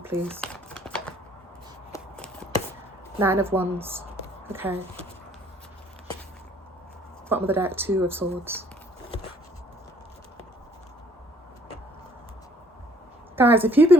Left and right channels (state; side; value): normal; both; correlation 0.60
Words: please. 9 of Wands. Okay. Bottom of the deck, 2 of Swords. Guys, if you've